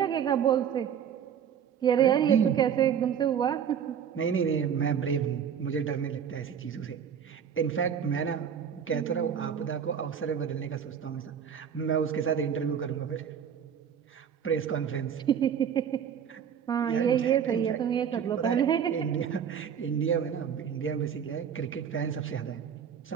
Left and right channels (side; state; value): left; quieter; 8.1 dB